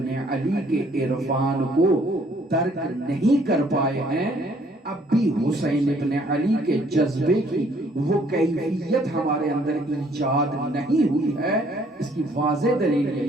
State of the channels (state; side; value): normal; both; correlation 0.62